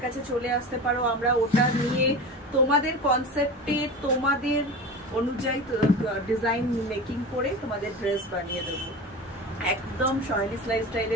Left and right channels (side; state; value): both; normal; correlation 0.30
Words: কাছে চলে আসতে পারো। আমরা ওটা নিয়ে তোমাদের কনসেপ্টে তোমাদের অনুযায়ী ডিজাইন মেকিং করে তোমাদের ড্রেস বানিয়ে দেবো। একদম সাহেলিস